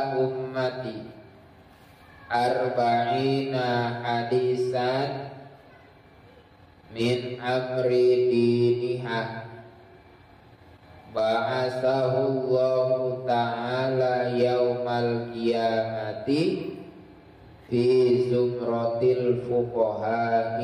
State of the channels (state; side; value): identical; both; correlation 1.00